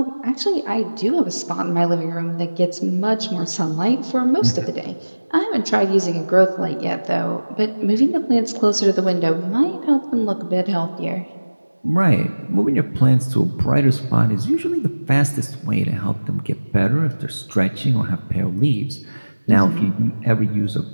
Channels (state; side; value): inverted; both; correlation -1.00